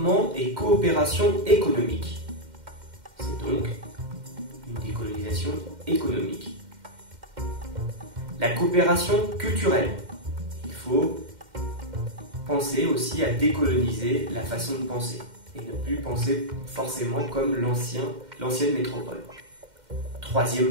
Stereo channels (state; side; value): late; left; 2.1 ms